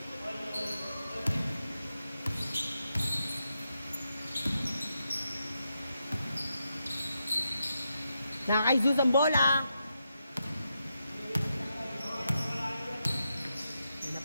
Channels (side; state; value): both; inverted; correlation -0.85